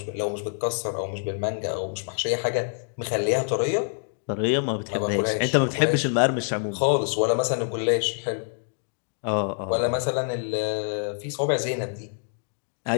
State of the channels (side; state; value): right; silent; digital silence